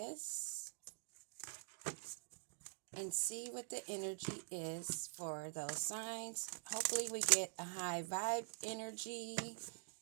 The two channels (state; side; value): silent; left; digital silence